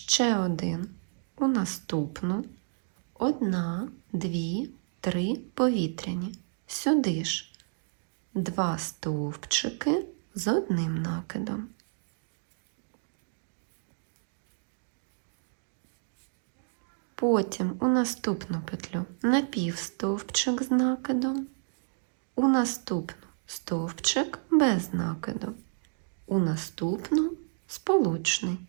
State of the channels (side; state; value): left; silent; digital silence